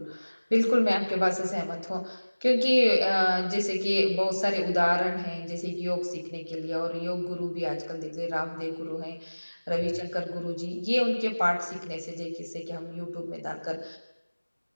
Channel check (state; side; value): inverted; both; correlation -1.00